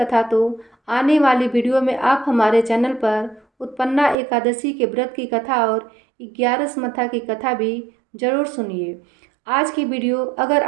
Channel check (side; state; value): left; drops out; at 4.2 s